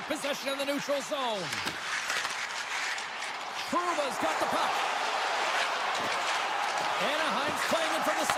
possession in the neutral zone. Truba's got the puck. Anaheim's playing it from the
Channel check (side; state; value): both; identical; correlation 1.00